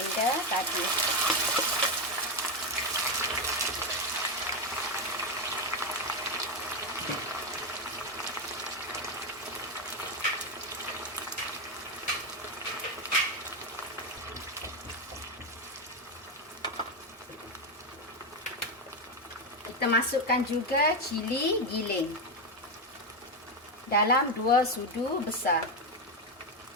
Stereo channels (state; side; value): normal; both; correlation 0.09